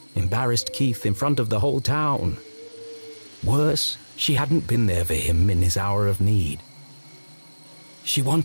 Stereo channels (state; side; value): inverted; both; correlation -1.00